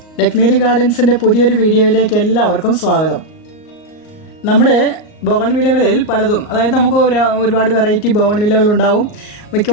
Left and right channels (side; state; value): right; late; 38 ms